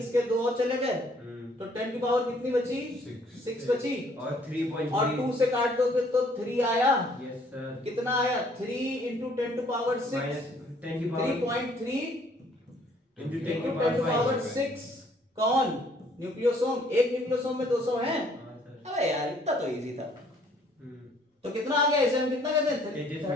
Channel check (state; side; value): normal; both; correlation 0.61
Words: 2 और चले गए, तो 10 की पावर कितनी बची? 6 बची। और 3.3 और 2 से काट दोगे तो 3 आया। Yes sir. कितना आया? 3 into 10 to power 6, -10 की पावर 3.3 into 10 into की 10 to power पावर 6। कौन? न्यूक्लियोसोम। एक न्यूक्लियोसोम में 200 हैं। हाँ सर। अबे यार इतना तो इजी था। तो कितना आ गया? इसे हम कितना कहते हैं?